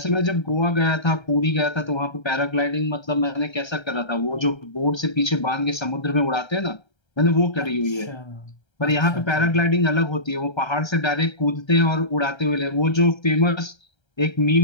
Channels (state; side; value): late; right; 1.3 ms